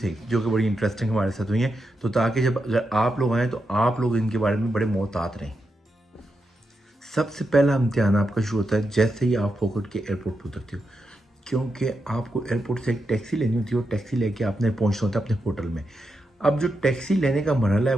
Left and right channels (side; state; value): both; normal; correlation 0.86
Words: जो कि बड़ी इंटरेस्टिंग हमारे साथ हुई हैं। तो ताकि जब अगर आप लोग आएँ तो आप लोग इनके बारे में बड़े मोहतात रहें। सबसे पहला इम्तिहान आपका शुरू होता है जैसे ही आप फोकट के एयरपोर्ट पर उतरते हो, क्योंकि आपको एयरपोर्ट से एक टैक्सी लेनी होती है और टैक्सी लेके आपने पहुंचना होता है अपने होटल में। अब जो टैक्सी लेने का मरहला है